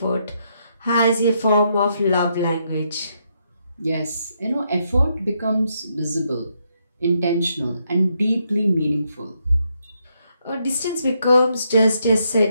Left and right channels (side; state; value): both; inverted; correlation -0.77